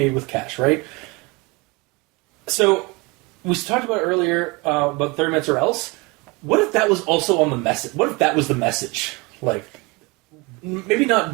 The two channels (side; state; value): left; quieter; 26.7 dB